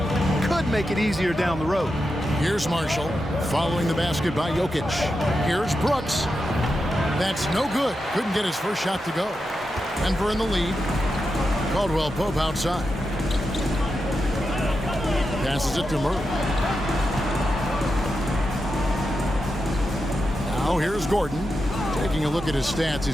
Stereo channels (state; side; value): normal; both; correlation 0.88